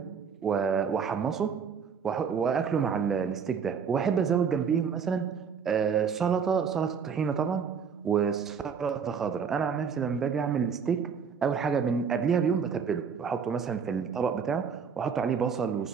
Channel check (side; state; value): left; quieter; 6.5 dB